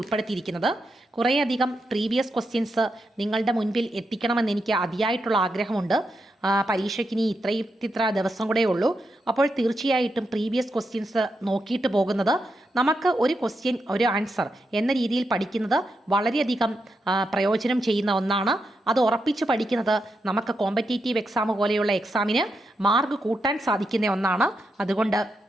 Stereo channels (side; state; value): both; normal; correlation 0.85